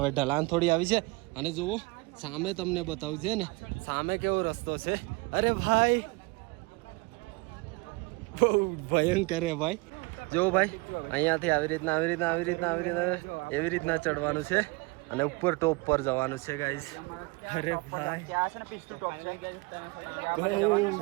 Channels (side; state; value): left; quieter; 25.7 dB